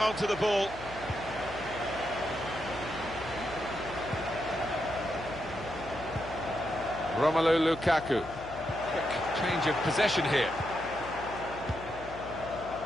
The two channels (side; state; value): left; noise; hum, 15 dB below the sound